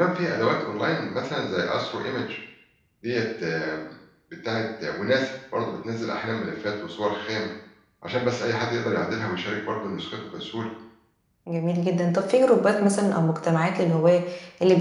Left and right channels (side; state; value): both; identical; correlation 1.00